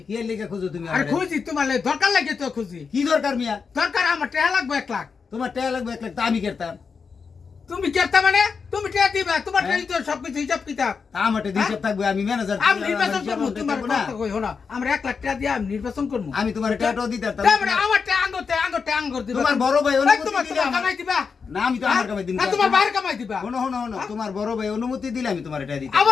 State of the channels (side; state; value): right; quieter; 5.5 dB